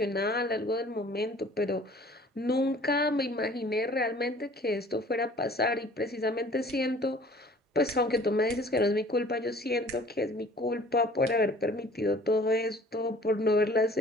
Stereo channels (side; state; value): both; normal; correlation 0.51